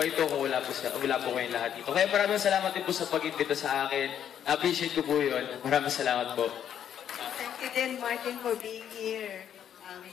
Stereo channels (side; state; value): right; quieter; 9.5 dB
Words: ito kung wala po kayong lahat dito. Kaya maraming salamat din po sa pag-invita sa akin. Appreciate ko po yun. Maraming salamat po. Thank you din, Martin, for being here.